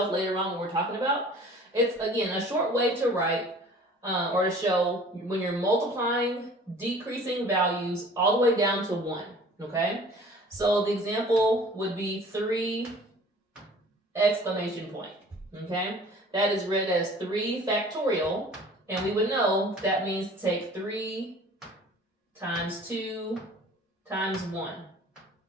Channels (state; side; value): normal; both; correlation 0.48